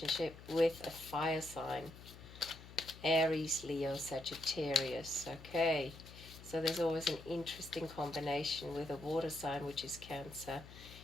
with a fire sign, Aries, Leo, Sagittarius. Okay, so there's always an interesting combination with a water sign, which is Cancer,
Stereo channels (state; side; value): noise; left; hum, 16 dB below the sound